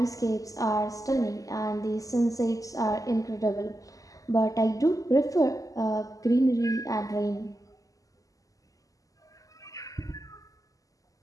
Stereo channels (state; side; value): late; right; 0.17 ms